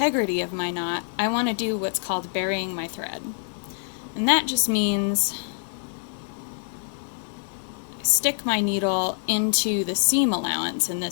of my knot, I want to do what's called burying my thread. And that just means stick my needle into the seam allowance in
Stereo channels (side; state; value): right; silent; 61 dB below the other